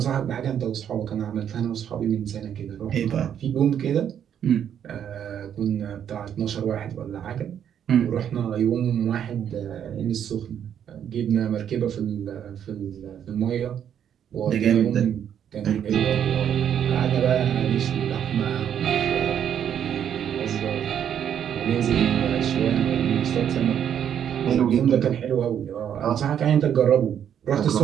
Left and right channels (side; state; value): left; quieter; 9.1 dB